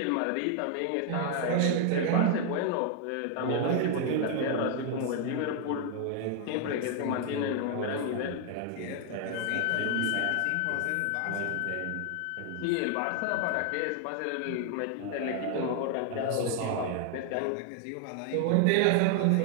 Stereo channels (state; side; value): different; both; correlation 0.00